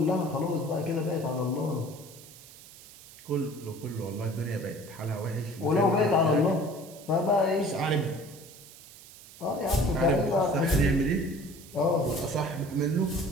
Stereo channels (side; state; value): right; noise; hiss, 19 dB below the sound